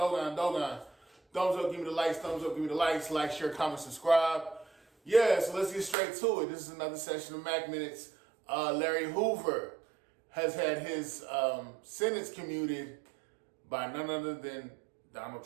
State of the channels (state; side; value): drops out; left; at 6.0 s